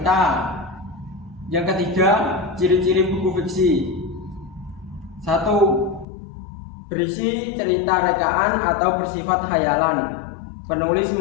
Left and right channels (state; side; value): drops out; right; at 6.1 s